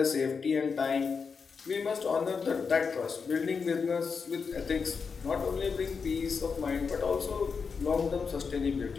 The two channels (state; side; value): quieter; right; 5.5 dB